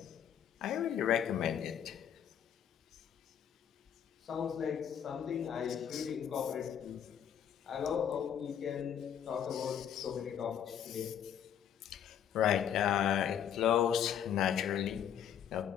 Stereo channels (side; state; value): right; quieter; 9.0 dB